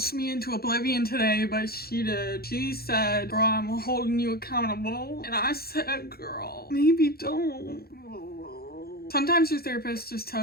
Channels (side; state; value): right; late; 0.45 ms